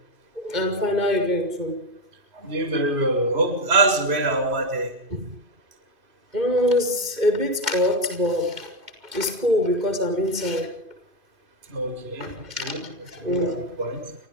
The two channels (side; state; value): left; late; 2.5 ms